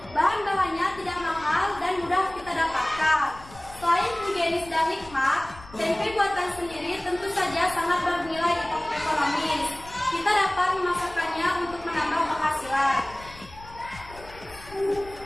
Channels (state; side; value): noise; left; rumble, 19 dB below the sound